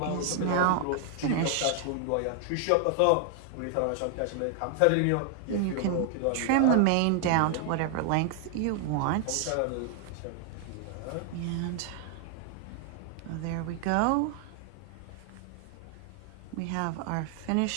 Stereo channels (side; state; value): both; different; correlation 0.00